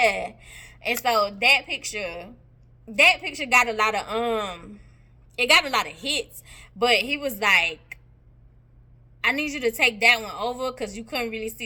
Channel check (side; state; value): both; identical; correlation 1.00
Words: And so that picture got a lot of hits. But he was like, I need you to take that one over because you couldn't really see